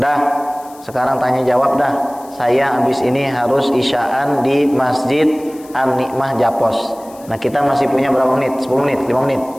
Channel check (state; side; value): noise; left; hiss, 24 dB below the sound